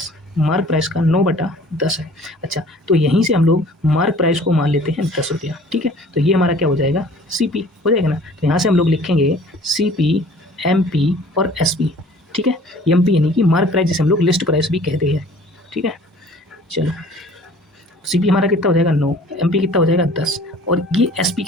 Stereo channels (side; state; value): both; normal; correlation 0.49